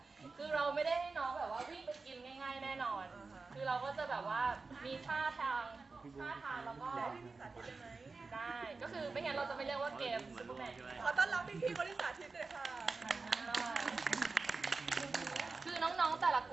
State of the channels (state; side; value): quieter; left; 4.1 dB